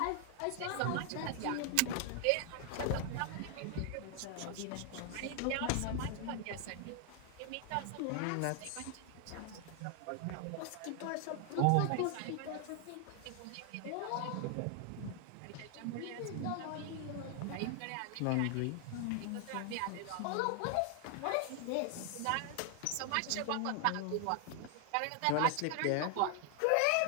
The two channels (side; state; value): both; different; correlation 0.00